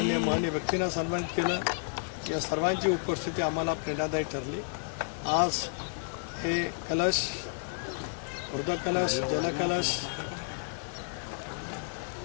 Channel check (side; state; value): right; silent; digital silence